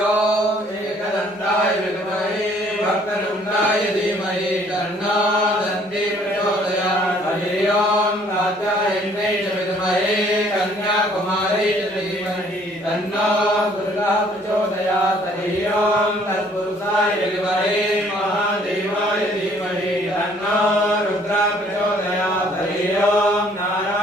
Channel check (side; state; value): both; normal; correlation 0.60